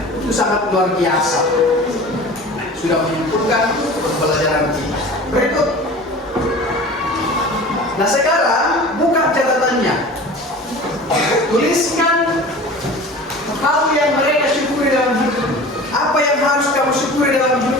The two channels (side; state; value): both; normal; correlation 0.39